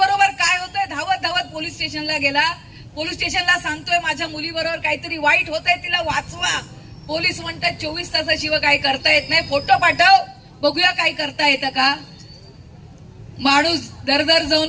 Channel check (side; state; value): both; identical; correlation 1.00